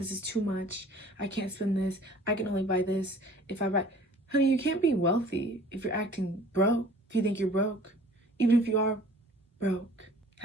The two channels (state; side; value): normal; both; correlation 0.50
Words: is too much. I can't spend this. I can only buy this if I buy. Honey, you can't be wealthy if you're acting broke, if you think you're broke. Even if you are broke,